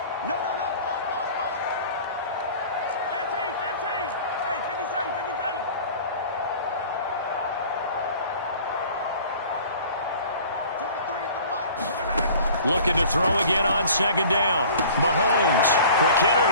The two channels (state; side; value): inverted; both; correlation -0.46